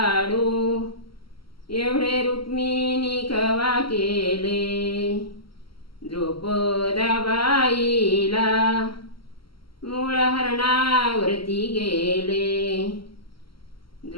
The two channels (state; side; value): late; right; 0.74 ms